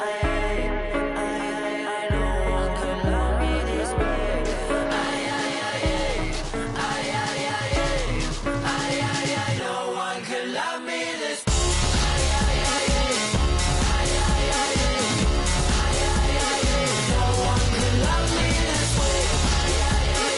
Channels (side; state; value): both; identical; correlation 1.00